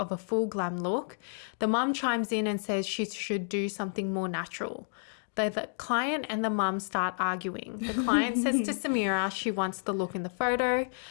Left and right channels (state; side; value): silent; right; digital silence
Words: a full glam look. The mum chimes in and says she should do something more natural. The client and the mum start arguing. The client says to Samira she wants the look in the photo.